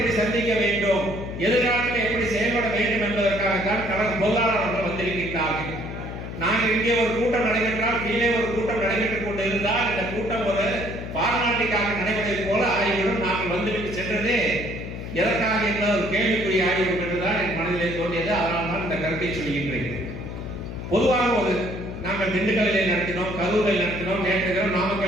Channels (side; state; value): left; noise; hum, 8 dB below the sound